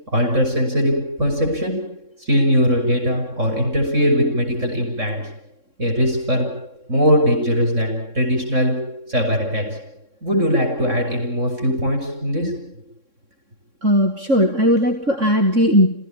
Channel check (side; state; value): left; late; 3.6 ms